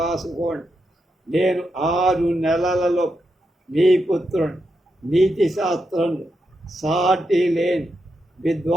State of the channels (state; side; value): normal; both; correlation 0.84